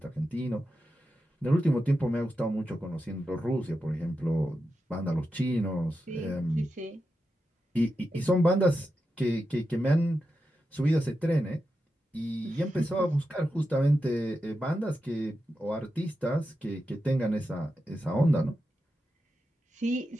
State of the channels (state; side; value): normal; both; correlation 0.89